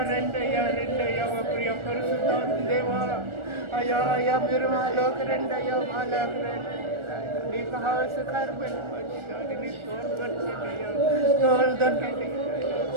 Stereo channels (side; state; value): left; late; 1.4 ms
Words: రెండయ్యా మా ప్రియ పరిశుద్ధాత్మ దేవా, అయ్యా మీరు మాలోకి రెండయ్యా, మాలోకి రండి. నీకు హాస్యకరమైన మంచిదాన్ని నీ తోడుపరచండియ్యా, తోడుదండి.